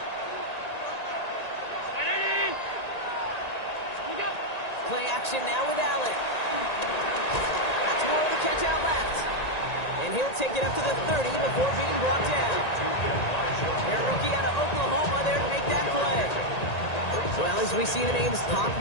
Play action now with Allen. That's more of the catch out left. And he'll take it up to the 30 before being brought down. Their rookie out of Oklahoma there to make that play. Well, as we see the names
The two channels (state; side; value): late; right; 1.9 ms